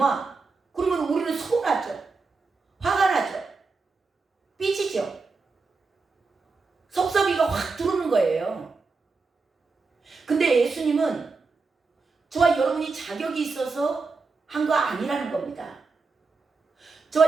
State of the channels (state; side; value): quieter; left; 4.3 dB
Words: 그러면 우리는 서운하죠. 화가 나죠. 삐지죠. 섭섭이가 확 들어오는 거예요. 근데 예수님은 저와 여러분이 자격이 있어서 한 거 아니라는 겁니다.